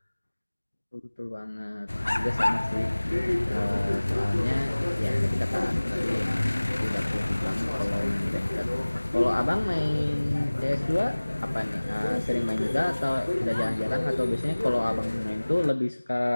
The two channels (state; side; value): inverted; both; correlation -1.00